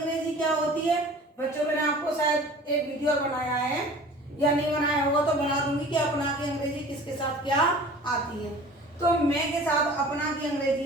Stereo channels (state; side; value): normal; both; correlation 0.44